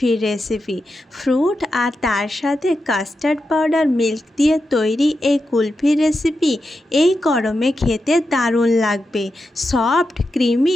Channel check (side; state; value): both; normal; correlation 0.89